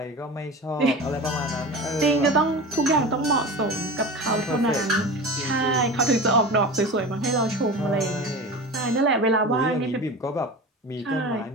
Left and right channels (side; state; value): both; normal; correlation 0.31